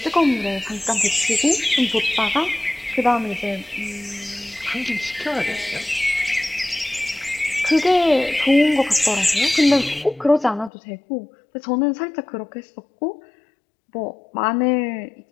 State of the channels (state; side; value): drops out; right; at 10.7 s